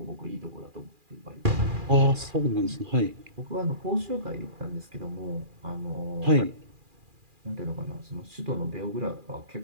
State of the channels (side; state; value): left; late; 2.4 ms